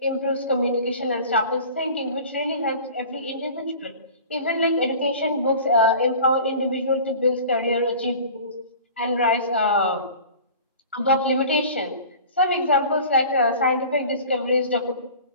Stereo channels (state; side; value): inverted; both; correlation -0.41